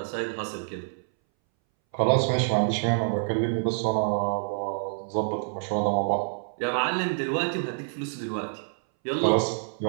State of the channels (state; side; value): silent; left; 60 dB below the other